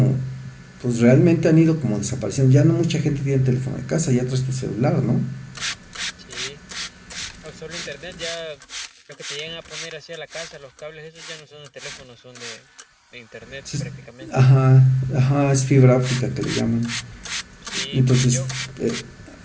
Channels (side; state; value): both; identical; correlation 1.00